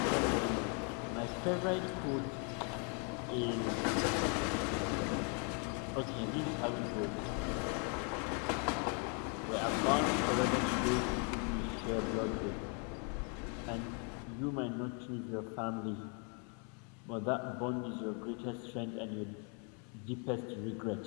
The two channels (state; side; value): quieter; right; 38.4 dB